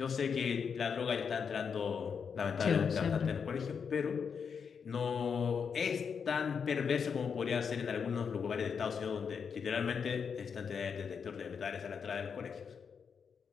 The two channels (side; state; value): right; quieter; 6.4 dB